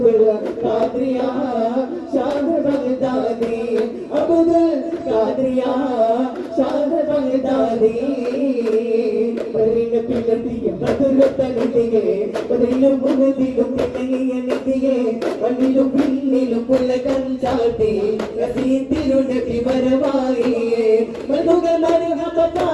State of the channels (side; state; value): both; identical; correlation 1.00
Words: ഖാദിറിയ ഷാദ് ബഗ്ദാദി അബ്ദുൽ ഖാദിറിയ ഷാദ് ബഗ്ദാദി പരിന പിലതിയ ബദുലതനിതിയെ പതിലും മുഹദിലും പിന്നങ്ങിയ നിതിയെ വന്നിലും പിന്നിലും പുലകം ചാട്ടി റസീതിരു നബി വരവായിയെ മധുകൾ മരഹബ